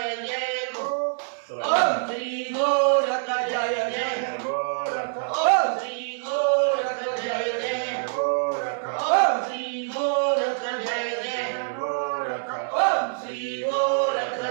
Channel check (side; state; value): left; silent; digital silence